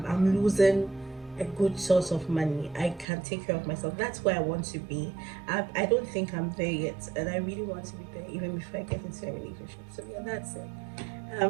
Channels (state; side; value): drops out; left; at 3.1 s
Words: losing a good source of money. I can take care of myself. That's where I want to be. I don't think I'm there yet, and I really want to be there even before I get into a relationship. So yeah, that's it.